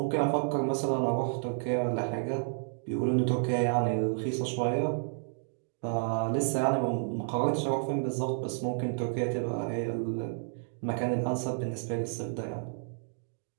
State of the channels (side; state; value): left; silent; digital silence